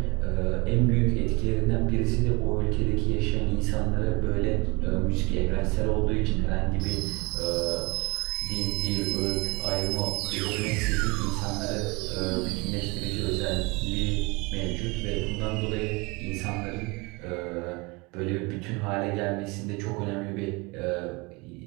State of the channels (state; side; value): quieter; left; 26.6 dB